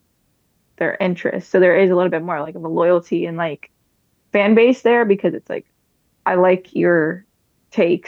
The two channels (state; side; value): identical; both; correlation 1.00